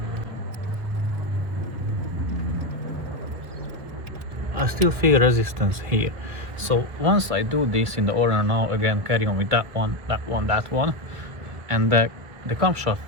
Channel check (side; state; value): left; late; 2.1 ms